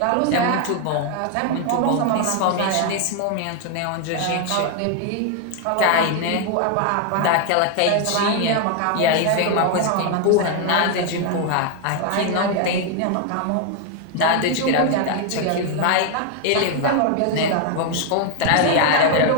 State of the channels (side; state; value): both; different; correlation 0.00